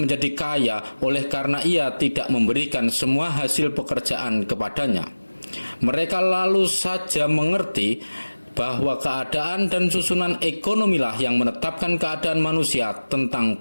menjadi kaya oleh karena ia tidak memberikan semua hasil pekerjaan kepadanya. Mereka lalu saja mengerti bahwa keadaan dan susunan ekonomilah yang menetapkan keadaan manusia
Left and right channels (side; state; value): both; inverted; correlation -1.00